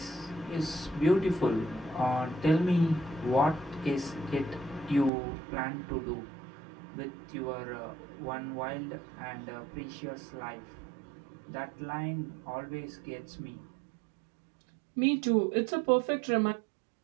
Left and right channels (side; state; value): left; drops out; at 5.1 s